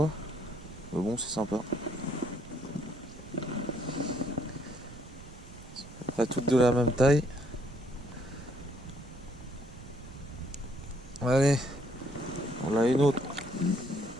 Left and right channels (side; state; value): right; noise; rumble, 17 dB below the sound